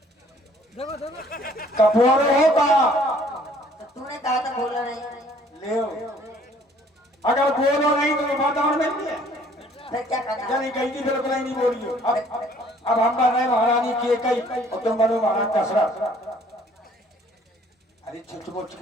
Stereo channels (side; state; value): both; normal; correlation 0.58